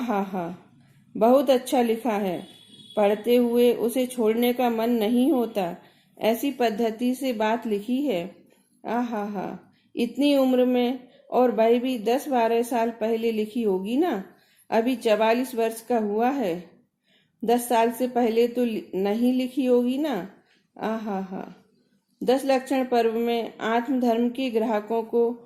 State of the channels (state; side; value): identical; both; correlation 1.00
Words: हा, बहुत अच्छा लिखा है। पढ़ते हुए उसे छोड़ने का मन नहीं होता। ऐसी पद्धति से बात लिखी है। आहा हा, इतनी उम्र में, और वह भी 10-12 साल पहले लिखी होगी ना। अभी 44 वर्ष का हुआ है। 10 साल से पहले तो नहीं लिखी होगी ना। आहा हा, 10 लक्षण पर्व में आत्मधर्म के ग्राहकों को